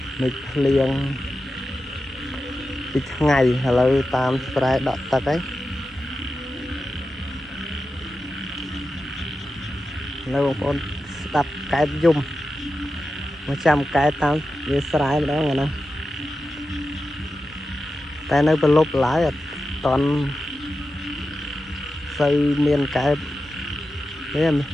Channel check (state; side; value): normal; both; correlation 0.91